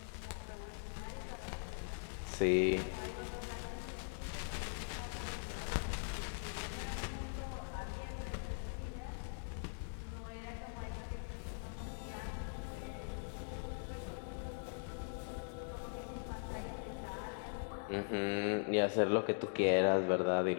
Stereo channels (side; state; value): right; silent; digital silence